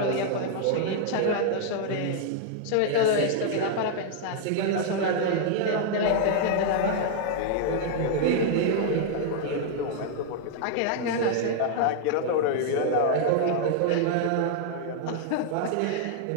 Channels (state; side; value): different; both; correlation 0.00